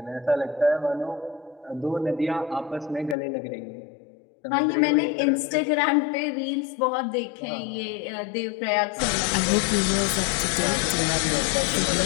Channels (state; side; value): drops out; right; at 3.2 s